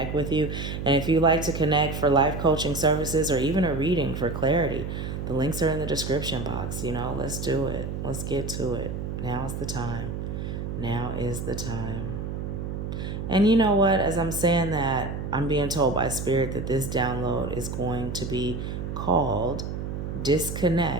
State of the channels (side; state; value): right; noise; hum, 5 dB below the sound